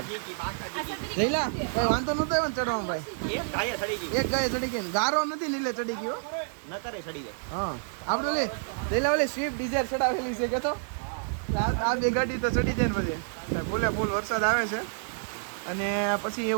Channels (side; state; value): left; silent; digital silence